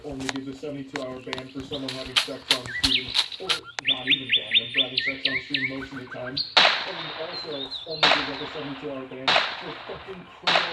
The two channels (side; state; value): both; identical; correlation 1.00